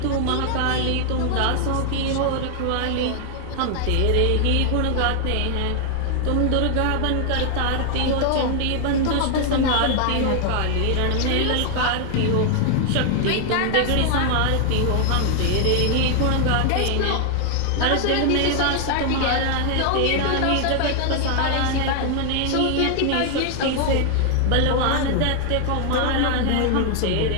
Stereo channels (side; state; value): both; different; correlation 0.00